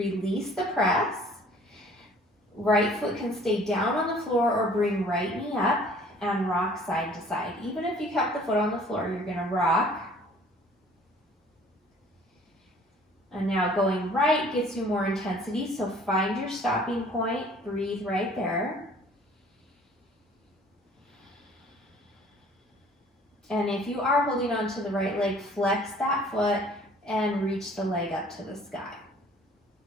the press. Right foot can stay down on the floor or bring right knee up and rock side to side. Even if you kept the foot on the floor, you're going to rock. And now going right gets you more intensity, so find your stopping point, breathe right there. And if you are holding on to the right leg, flex that foot and reach the leg up to the sky.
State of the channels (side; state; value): both; normal; correlation 0.53